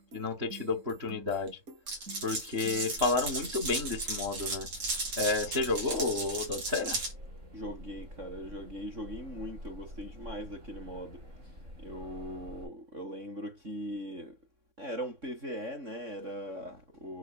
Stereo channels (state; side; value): late; left; 3.7 ms